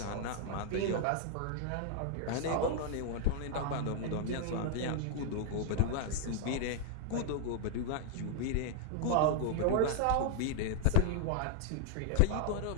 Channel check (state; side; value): different; both; correlation -0.01